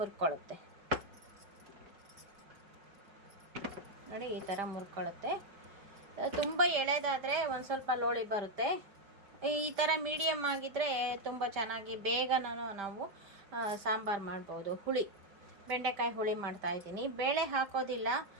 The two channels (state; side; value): late; left; 5.1 ms